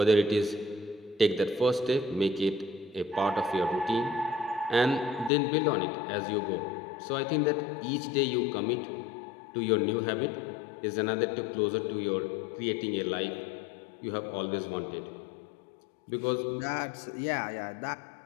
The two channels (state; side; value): drops out; right; at 5.3 s